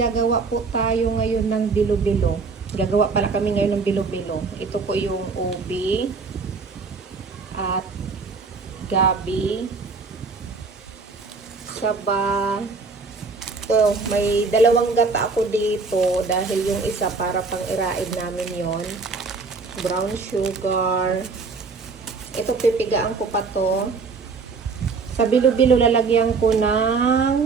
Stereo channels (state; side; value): quieter; left; 4.5 dB